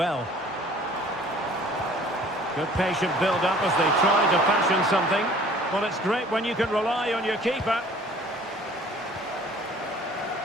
Good patient build-up as they try to fashion something. Well, it's great when you can rely on your keeper.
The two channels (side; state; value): both; normal; correlation 0.51